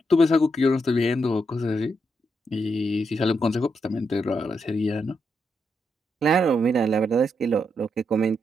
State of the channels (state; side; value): normal; both; correlation 0.81